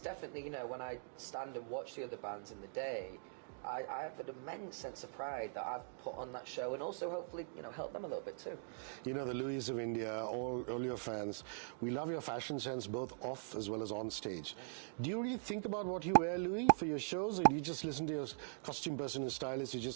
you know, when I stand and watch the other bands in the day, I have an immense sense of pride that I've put on that show, and also hopefully, you know, help them a little bit too. You know, the Louis of India, all your fans, we love your fashion sense both off as well as on stage. Do you really think about what you wear, Louis, for your shows, or do you just listen to your costume person and stylist who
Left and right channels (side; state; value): left; silent; digital silence